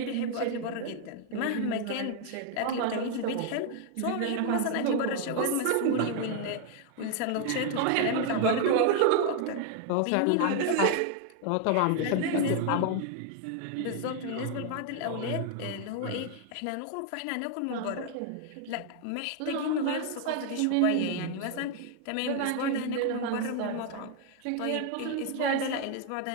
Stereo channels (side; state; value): both; different; correlation 0.00